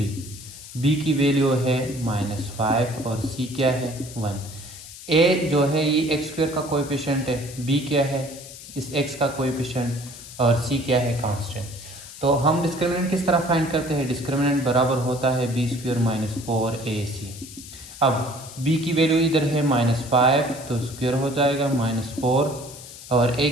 b की वैल्यू है -5 और c क्या है? 1। a जो है ये x स्क्वायर का कोएफिशिएंट है, b क्या है? इस x का कोएफिशिएंट, और c क्या है? कांस्टेंट। तो हम डिस्क्रिमिनेंट किस तरह फाइंड करते हैं? डिस्क्रिमिनेंट बराबर होता है b स्क्वायर -4ac। अब b की वैल्यू इधर है -5, तो स्क्वायर हो जाएगा -4, और a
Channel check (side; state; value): left; noise; hiss, 15 dB below the sound